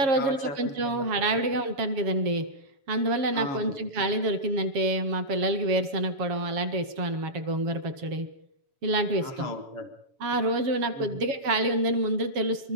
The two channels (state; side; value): late; left; 7.4 ms